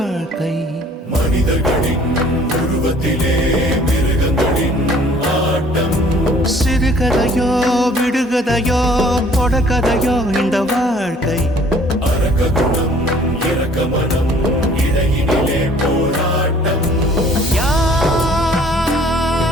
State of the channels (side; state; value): both; normal; correlation 0.55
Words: மனிதர்களின் உருவத்திலே மிருகங்களின் ஆட்டம். சிறுகதையோ விடுகதையோ தொடர்கதையோ இந்த வாழ்க்கை அரக்க குணம் இரக்க மனம் இடையினிலே போராட்டம்.